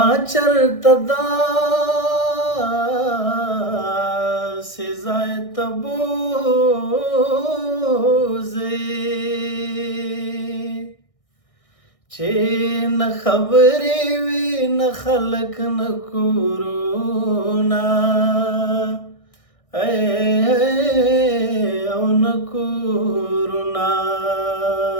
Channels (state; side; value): late; right; 1.6 ms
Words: چرته داسې ځای ته بوځې چې نه خبرې وي نه خلک نه کورونه او نه کورونه